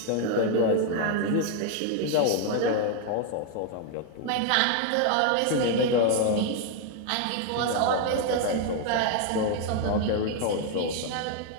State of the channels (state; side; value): different; both; correlation 0.01